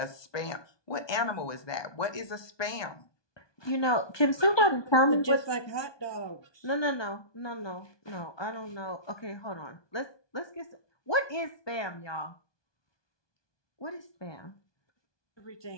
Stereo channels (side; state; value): right; late; 1.2 ms